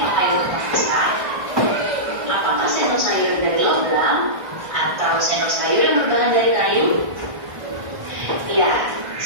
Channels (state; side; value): late; left; 1.5 ms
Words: untuk memasak? Apakah sendok sayur dari logam atau sendok sayur yang berbahan dari kayu? Ya,